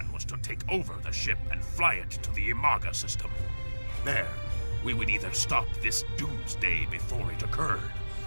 was to take over the ship and fly it to the Imaga system. There, we would either stop this doomsday before it occurred,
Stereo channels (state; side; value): inverted; both; correlation -1.00